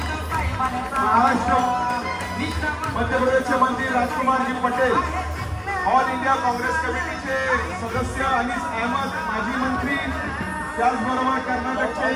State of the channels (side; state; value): both; identical; correlation 1.00